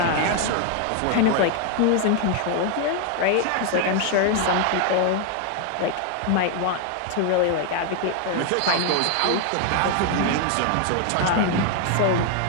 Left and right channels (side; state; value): both; different; correlation 0.01